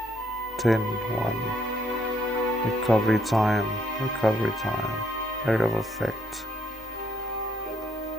10 1. Recovery time, area of effect.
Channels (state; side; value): normal; both; correlation 0.71